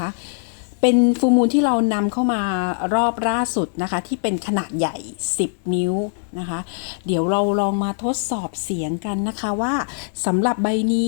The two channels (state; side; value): silent; right; digital silence